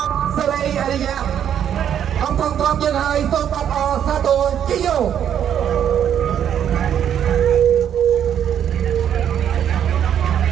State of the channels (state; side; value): quieter; left; 9.4 dB